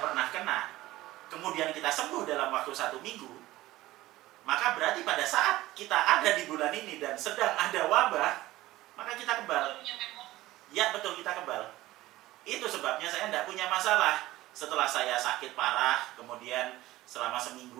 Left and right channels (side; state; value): left; quieter; 17.0 dB